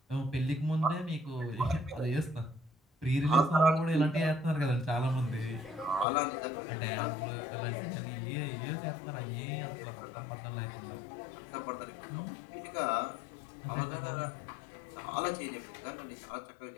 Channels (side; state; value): right; drops out; at 6.1 s